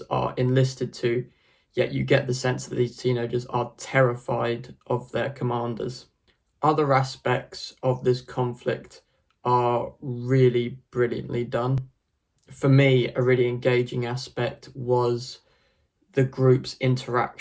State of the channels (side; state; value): both; identical; correlation 1.00